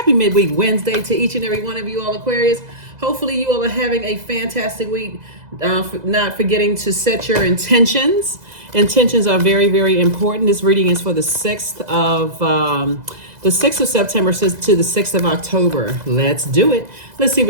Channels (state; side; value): late; left; 2.0 ms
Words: midweek Wednesday to each and every one of you all, Aquarius. Hopefully you all are having a fantastic week. Not forgetting to set your intentions. Intentions are very, very important. This reading is for the 6th of September to the 6th of October. Let's do it. Let's see